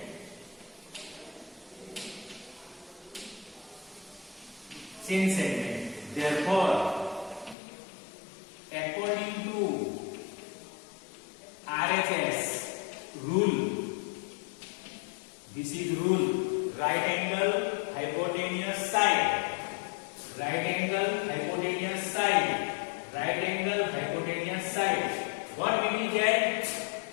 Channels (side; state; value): right; drops out; at 7.6 s